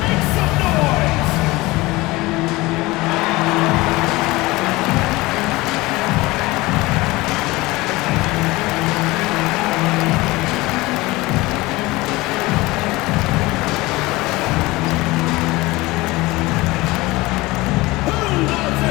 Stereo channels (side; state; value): right; quieter; 21.0 dB